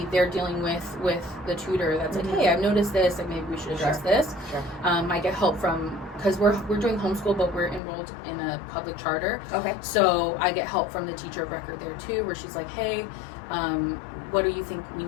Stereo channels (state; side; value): drops out; right; at 7.8 s